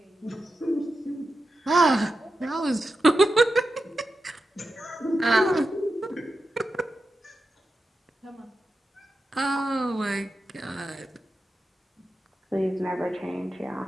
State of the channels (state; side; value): normal; both; correlation 0.90